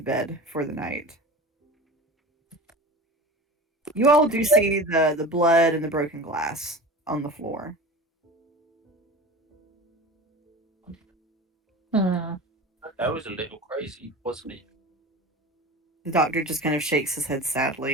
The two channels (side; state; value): both; normal; correlation 0.33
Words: bed for the night. You all do see the blood and the broken glass on the floor. That was a little crazy, wasn't it? The doctor just kind of shakes his head